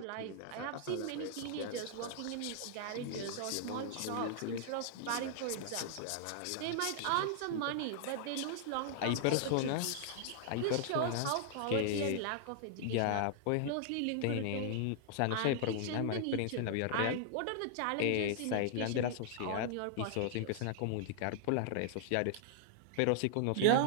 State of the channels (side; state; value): both; different; correlation -0.01